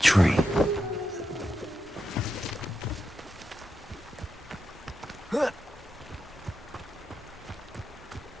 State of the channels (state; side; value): normal; both; correlation 0.87